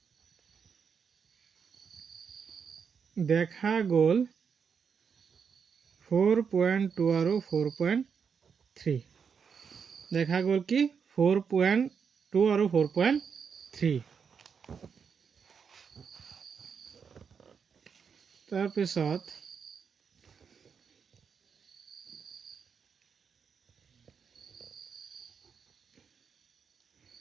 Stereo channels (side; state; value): left; quieter; 6.4 dB